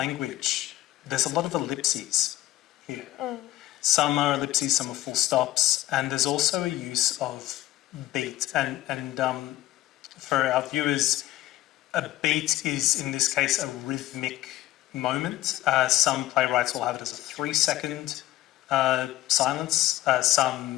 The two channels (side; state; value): right; quieter; 15.2 dB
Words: there's a lot of ellipses here. Some are ellipses, some are full stops, and there's also a use of beat. And for our viewers, a beat is, in this case, a rhythmic moment. Some playwrights will have it as a 3-second silence.